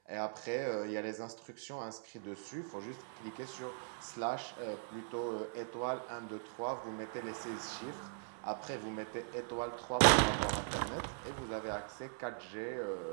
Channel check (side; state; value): left; silent; 51 dB below the other